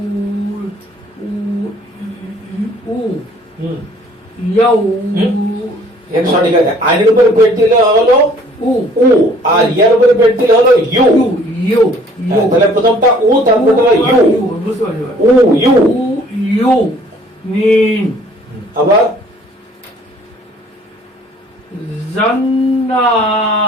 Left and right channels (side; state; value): both; normal; correlation 0.56